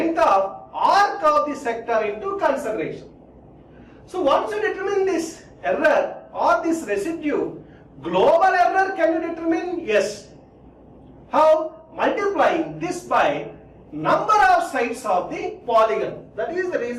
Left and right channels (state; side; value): identical; both; correlation 1.00